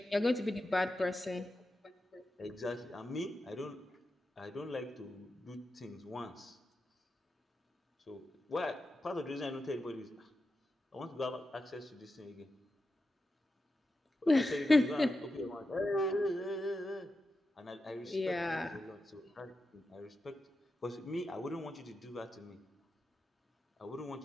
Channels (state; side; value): normal; both; correlation 0.89